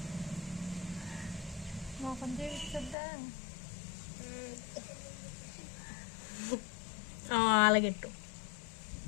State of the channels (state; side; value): drops out; right; at 3.0 s